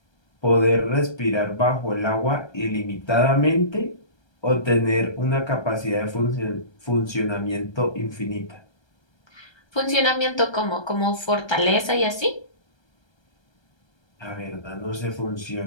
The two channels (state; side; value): late; right; 1.3 ms